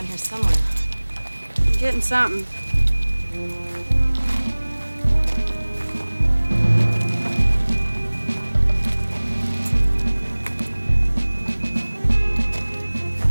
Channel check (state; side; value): inverted; both; correlation -1.00